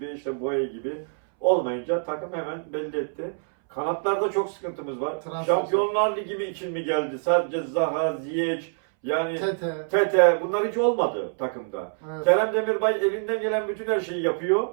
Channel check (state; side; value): silent; left; 61 dB below the other